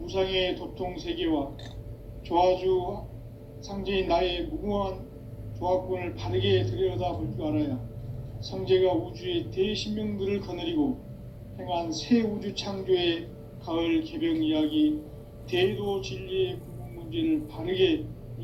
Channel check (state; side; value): identical; both; correlation 1.00